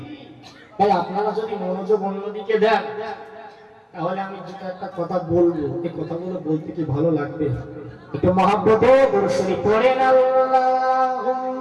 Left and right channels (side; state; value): both; identical; correlation 1.00